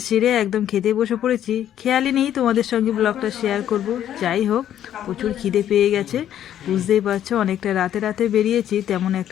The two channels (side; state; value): right; quieter; 10.9 dB